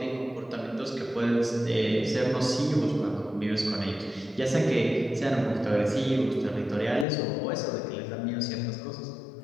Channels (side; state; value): right; drops out; at 7.1 s